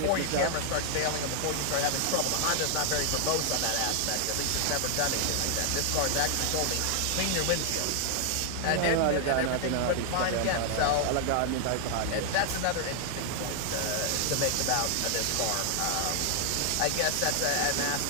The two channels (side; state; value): both; different; correlation 0.00